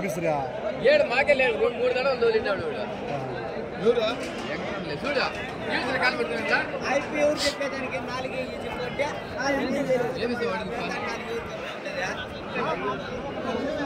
7 మాకే లేదు, 3 దడలు తోలినాడు.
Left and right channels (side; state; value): both; identical; correlation 1.00